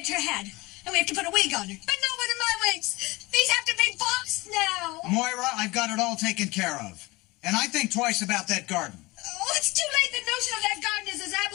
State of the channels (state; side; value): quieter; right; 22.4 dB